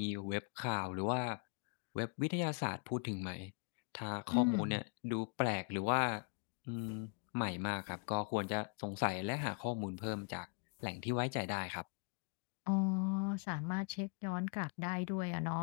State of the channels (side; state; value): right; quieter; 34.7 dB